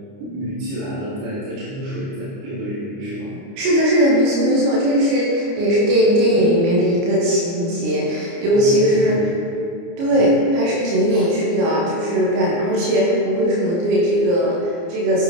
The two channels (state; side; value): late; left; 29 ms